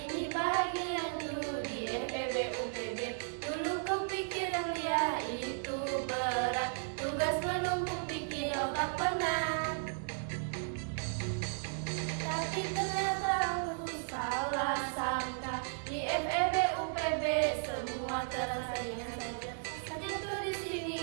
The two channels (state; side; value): silent; left; digital silence